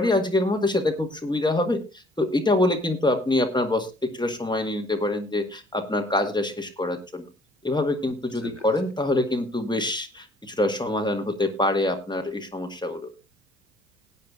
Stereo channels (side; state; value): both; normal; correlation 0.59